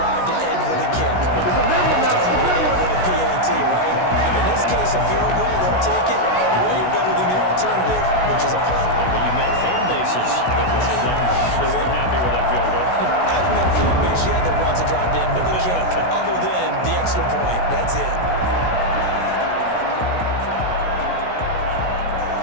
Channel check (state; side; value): late; right; 16 ms